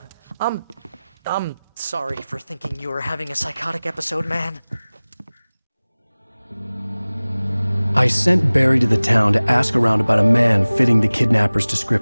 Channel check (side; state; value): both; inverted; correlation -0.99